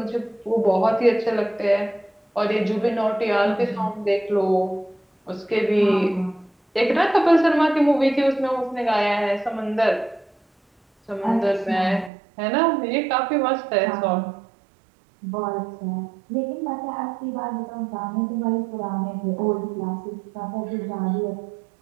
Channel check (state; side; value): drops out; left; at 12.1 s